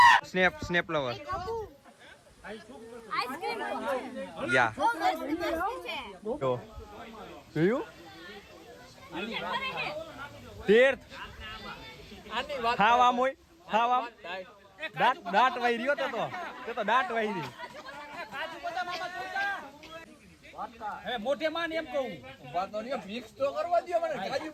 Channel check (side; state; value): both; identical; correlation 1.00